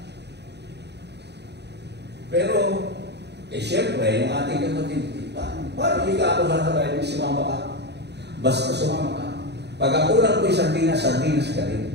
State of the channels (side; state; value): left; late; 0.49 ms